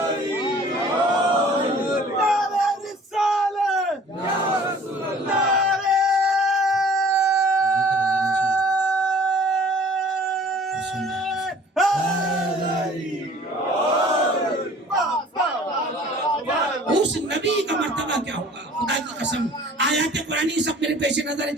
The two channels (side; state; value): both; normal; correlation 0.50